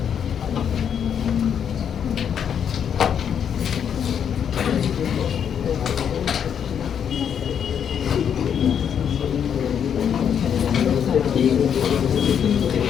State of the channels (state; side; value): quieter; right; 8.2 dB